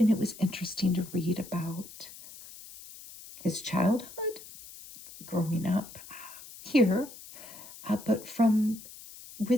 it was interesting to read about his childhood, growing up here, but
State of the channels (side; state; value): left; noise; hiss, 17 dB below the sound